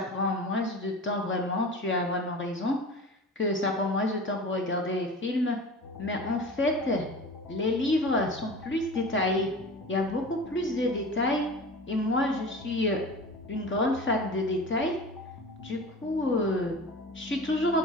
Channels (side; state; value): both; normal; correlation 0.35